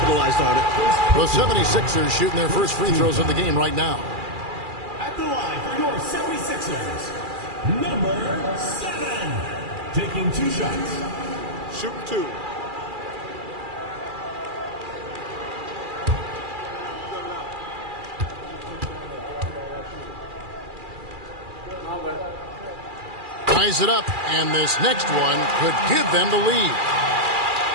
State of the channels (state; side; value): late; left; 2.4 ms